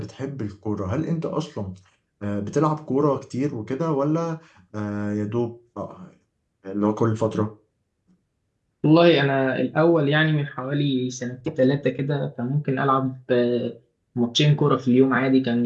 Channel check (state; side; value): identical; both; correlation 1.00